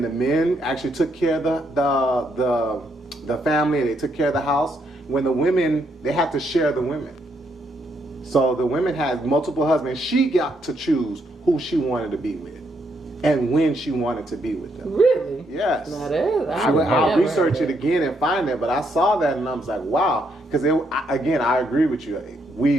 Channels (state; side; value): normal; both; correlation 0.76